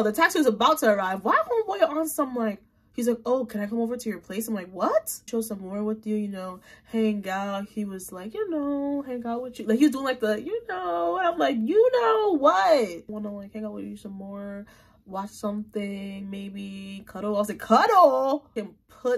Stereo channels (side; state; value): both; identical; correlation 1.00